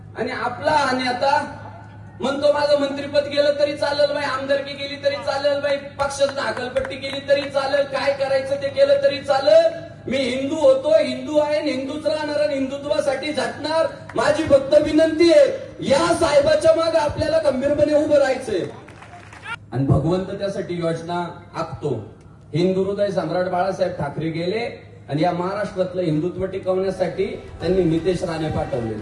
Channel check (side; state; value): both; identical; correlation 1.00